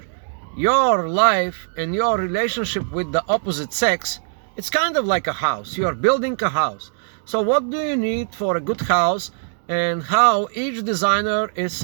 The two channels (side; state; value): left; silent; digital silence